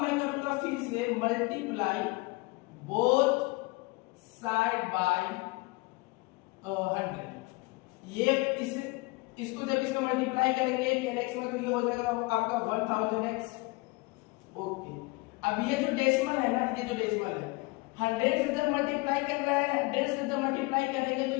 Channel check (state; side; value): quieter; right; 24.8 dB